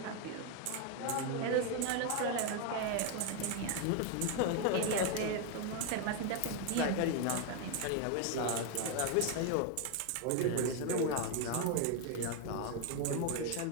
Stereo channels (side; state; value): both; different; correlation 0.01